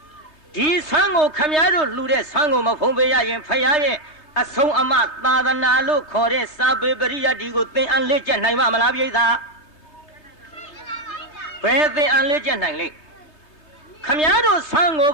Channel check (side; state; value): right; late; 3.0 ms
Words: ဒီဆွမ်းကိုခမည်းတော်လှူတဲ့ဆွမ်းကိုမဖုံးပေးရရင်ဖယားရဲ့အဆုံးအမသာသနာလို့ခေါ်တဲ့စာပေပရိယတ်ဒီကိုသင်အန်လက်ကျက်နိုင်မှာမလားပိဋကဘယ်သင်အန်လက်ကျက်နိုင်လိမ့်ခမည်းတော်ဆွမ်းကို